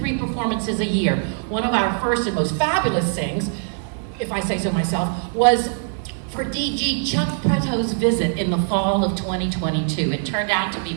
performances a year. One of our first and most fabulous things, if I say so myself, was for DG Chuck Preto's visit in the fall of 2022. It turned out to be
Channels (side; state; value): left; silent; 64 dB below the other